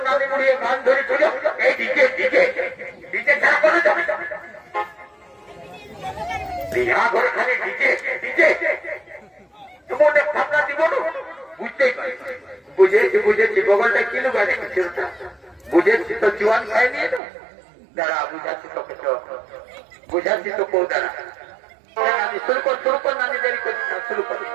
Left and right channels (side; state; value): left; drops out; at 17.2 s